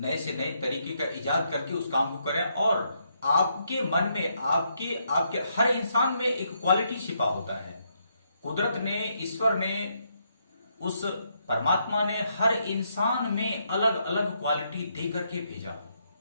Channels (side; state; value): both; inverted; correlation -0.77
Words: से नए तरीके का इजाद करके उस काम को करें। और आपके मन में, आपके हर इंसान में एक क्वालिटी छिपा होता है। कुदरत ने, ईश्वर ने, उस परमात्मा ने हर इंसान में अलग अलग क्वालिटी दे करके भेजा।